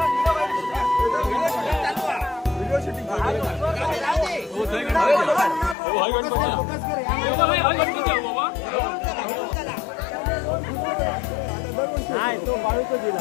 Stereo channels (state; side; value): drops out; right; at 5.8 s